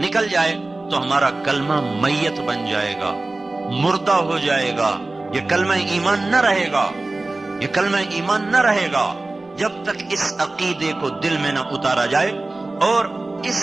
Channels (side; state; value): left; quieter; 3.0 dB